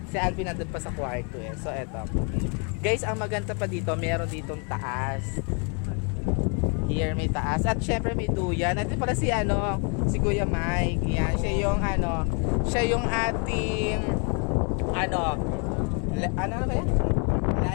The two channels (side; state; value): right; quieter; 36.2 dB